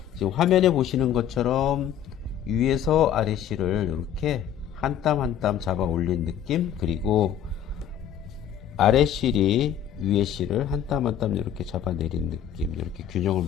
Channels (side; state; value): right; quieter; 9.7 dB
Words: 지금 화면에 보시는 것처럼 위에서 아래 실을 이렇게 한 땀 한 땀 잡아 올린 느낌, 그리고 아래 실이 위에 실을 한 땀 한 땀 이렇게 잡아내린 느낌, 이렇게 균형을